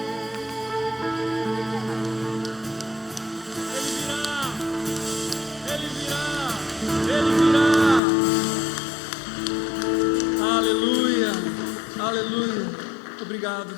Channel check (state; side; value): drops out; right; at 8.0 s